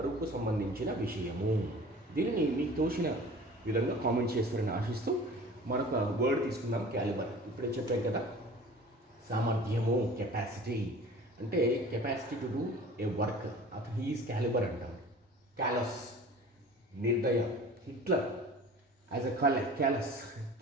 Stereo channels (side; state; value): both; normal; correlation 0.43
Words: సంబంధించిన విషయము. దీనిని మీకు తోచిన విధంగా కామెంట్ చేస్తారని ఆశిస్తూ మరొక వర్డ్ తీసుకుందాం, క్యాలిబర్. ఇప్పుడే చెప్పాం కదా, సామర్థ్యము, కెపాసిటీ. అంటే capacity to do a work, అతను హీఈస్ క్యాలిబర్ అంటాం. క్యాలస్, నిర్దయ. Hitler as a callous